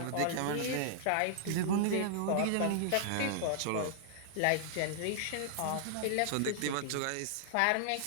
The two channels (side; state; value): both; different; correlation -0.01